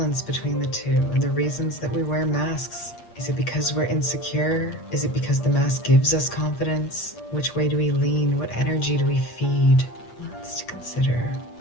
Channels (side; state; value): right; late; 8.5 ms